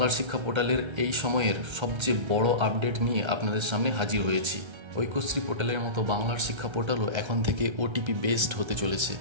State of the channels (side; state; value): left; late; 1.3 ms